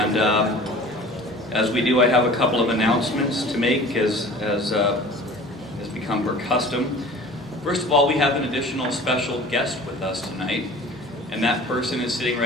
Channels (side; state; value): both; normal; correlation 0.43